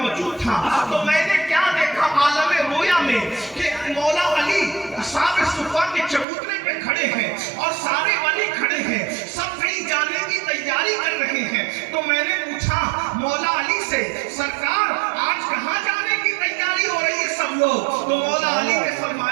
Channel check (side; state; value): left; drops out; at 6.2 s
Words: تھا تو میں نے کیا دیکھا عالم رویا میں کہ مولا علی اصحاب صفا کے چبوترے پہ کھڑے ہیں اور سارے ولی کھڑے ہیں، سب کہیں جانے کی تیاری کر رہے ہیں۔ تو میں نے پوچھا مولا علی سے سرکار آج کہاں جانے کی تیاری ہو رہی ہے سب لوگ؟ تو مولا علی نے